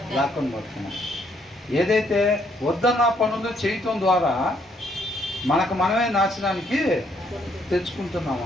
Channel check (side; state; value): both; normal; correlation 0.70